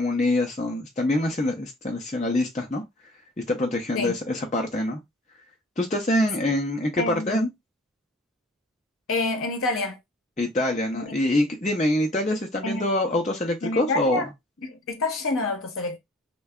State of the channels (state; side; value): normal; both; correlation 0.51